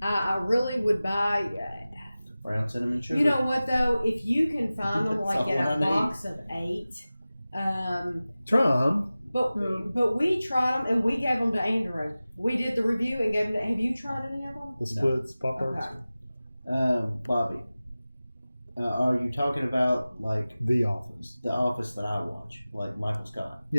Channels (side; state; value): both; inverted; correlation -0.97